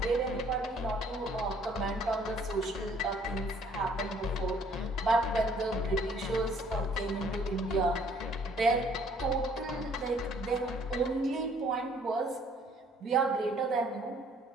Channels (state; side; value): normal; both; correlation 0.60